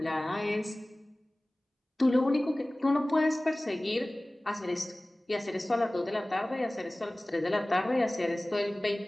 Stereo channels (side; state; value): both; normal; correlation 0.98